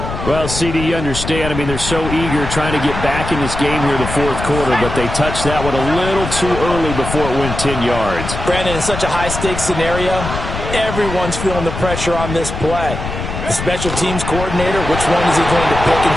Well, CD, you understand. I mean, they're so eager trying to get back in this game here in the 4th quarter, but they touched that one a little too early before it went 10 yards. Brandon, in such a high-stakes scenario, everyone's feeling the pressure on this play. The special teams coordinator, which one is he going to pick in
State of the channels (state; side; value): noise; left; rumble, 6 dB below the sound